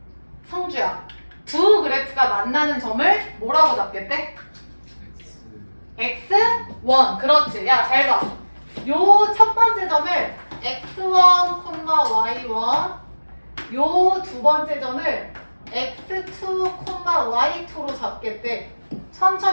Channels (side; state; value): both; inverted; correlation -1.00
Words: 성주야, 두 그래프가 만나는 점을 뭐라고 잡겠대? x1. 그렇지. 야, 잘 봐. 요 첫 번째 점을 x1, y1, 요 두 번째 점을 x2, y2로 잡겠대.